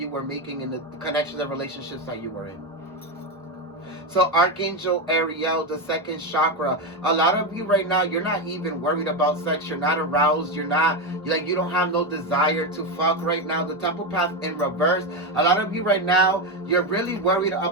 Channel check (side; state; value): both; normal; correlation 0.11